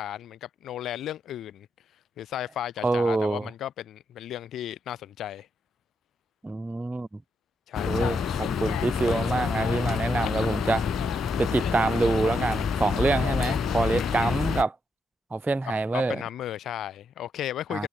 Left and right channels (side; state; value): both; normal; correlation 0.80